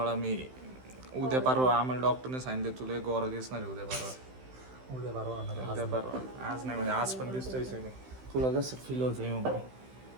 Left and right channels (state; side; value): late; left; 16 ms